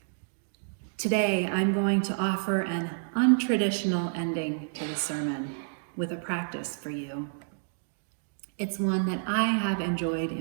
Today, I'm going to offer an untraditional ending to the sermon with a practice for you. It's one that I have enjoyed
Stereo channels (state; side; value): silent; left; digital silence